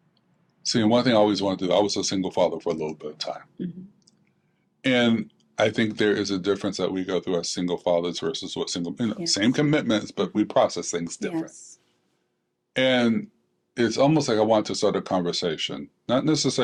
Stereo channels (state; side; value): identical; both; correlation 1.00